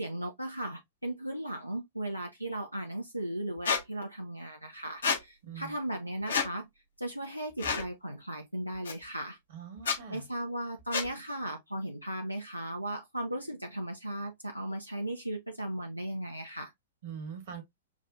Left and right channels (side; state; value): both; inverted; correlation -0.71